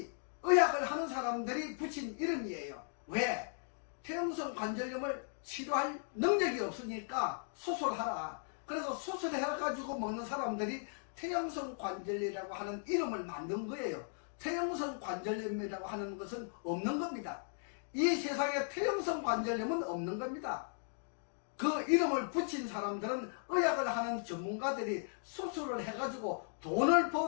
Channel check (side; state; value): right; silent; digital silence